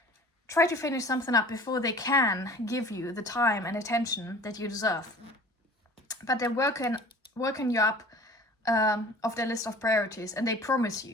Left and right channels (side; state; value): both; normal; correlation 0.45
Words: finish something up before they can give you the time and attention that you deserve. But they're working you up of their list of priorities, and they promise